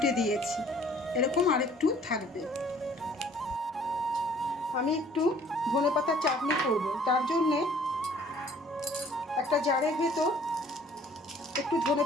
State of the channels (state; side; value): normal; both; correlation 0.56